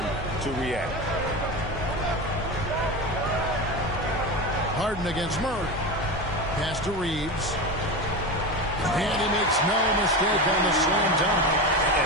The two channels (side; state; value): both; normal; correlation 0.22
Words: to react. Harden against Murray. Pass to Reeves. And he makes no mistake on the slam dunk.